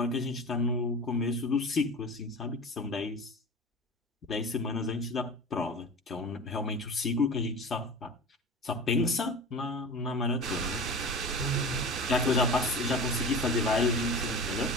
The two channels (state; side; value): normal; both; correlation 0.33